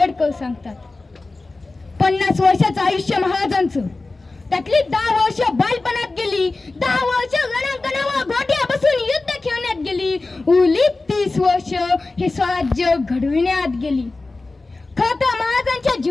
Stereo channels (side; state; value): right; quieter; 3.4 dB